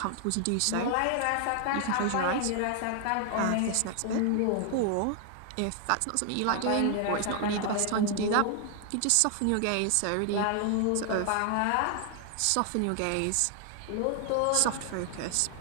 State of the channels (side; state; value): both; different; correlation 0.00